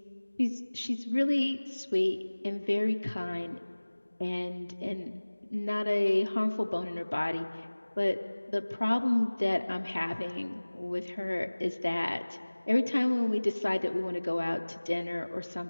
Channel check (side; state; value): both; inverted; correlation -1.00